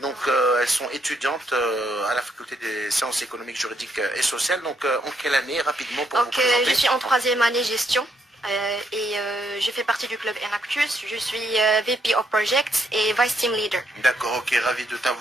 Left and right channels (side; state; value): both; normal; correlation 0.74